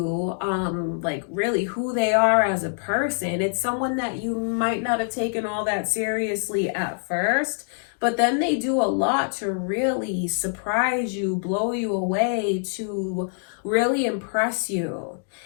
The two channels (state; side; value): silent; right; digital silence